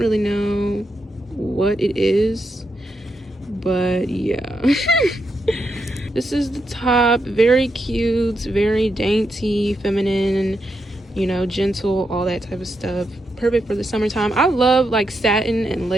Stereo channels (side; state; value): both; normal; correlation 0.83